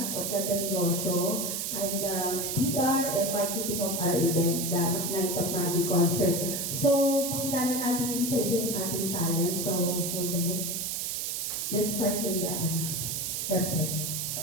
of Ganda Negosyo. I'm the PR and marketing of our event, the Night of Magic Concert. So, pakilala natin isa-isa yung ating talent. So, hold on wait. Let's start in the website.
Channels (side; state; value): right; noise; hiss, 2 dB below the sound